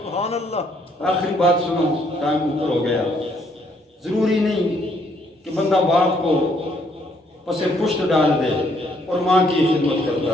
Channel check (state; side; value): normal; both; correlation 0.69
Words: سبحان اللہ. آخری بات سنو, ٹائم اوپر ہو گیا. ضروری نہیں کہ بندہ باپ کو پس پشت ڈال دے اور ماں کی خدمت کرتا